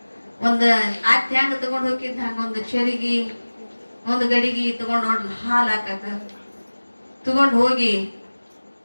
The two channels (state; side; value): inverted; both; correlation -1.00